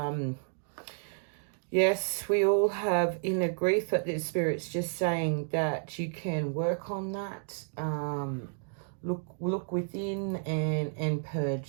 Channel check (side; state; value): left; silent; digital silence